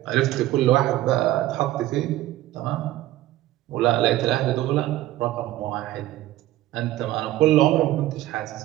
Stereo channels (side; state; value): left; quieter; 15.1 dB